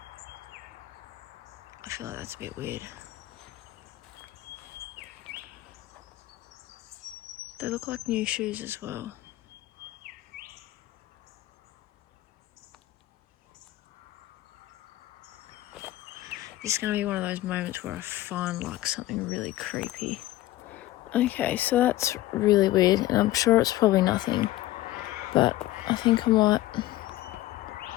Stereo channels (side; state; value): right; quieter; 16.1 dB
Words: I feel like that's a bit weird. They look like new shoes as well. This is going to be one of those moments where I find like something really creepy. Okay, so that's really weird, and I'm sure it's probably nothing, but I think I might